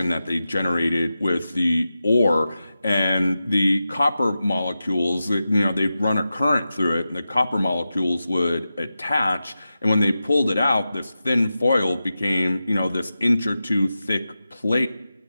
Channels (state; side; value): inverted; both; correlation -0.92